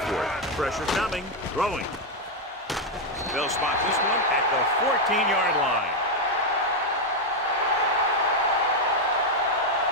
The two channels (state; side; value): normal; both; correlation 0.03